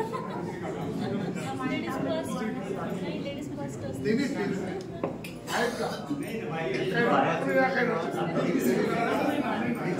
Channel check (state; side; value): identical; both; correlation 1.00